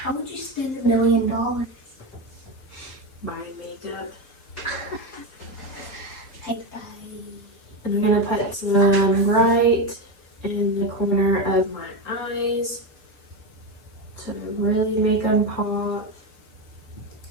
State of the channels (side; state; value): right; late; 4.4 ms